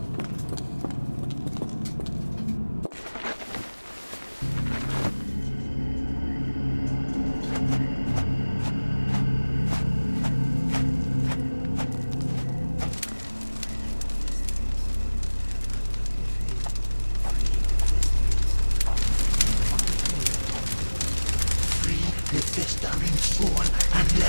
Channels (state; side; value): inverted; both; correlation -1.00